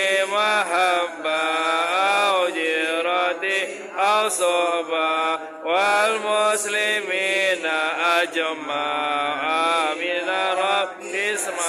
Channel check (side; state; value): both; identical; correlation 1.00